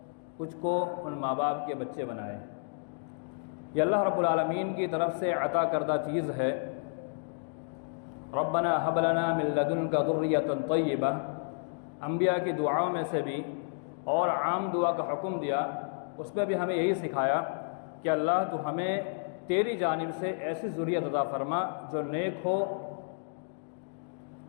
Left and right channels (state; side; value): silent; right; digital silence